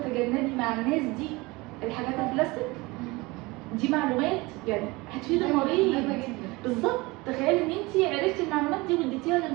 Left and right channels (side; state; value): left; quieter; 23.1 dB